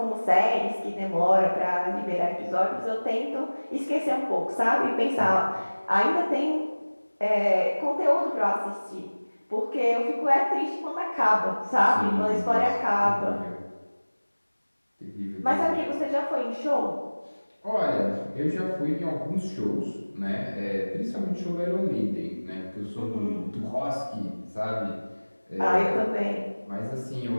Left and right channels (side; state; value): both; inverted; correlation -1.00